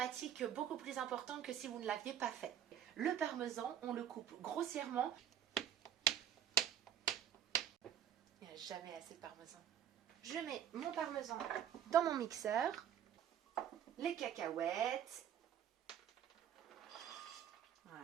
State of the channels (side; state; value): left; quieter; 9.7 dB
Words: beaucoup plus importante que si vous ne l'aviez pas fait. Le parmesan, on le coupe grossièrement. Il n'y a jamais assez de parmesan. Je mets mon parmesan dans mon mixeur. Les cacahuètes.